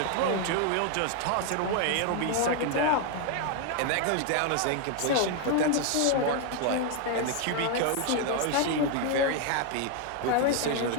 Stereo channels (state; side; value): different; both; correlation 0.00